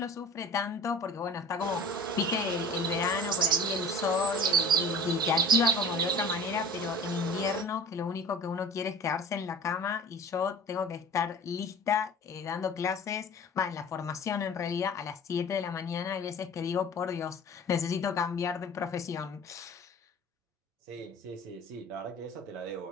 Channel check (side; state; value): both; normal; correlation 0.42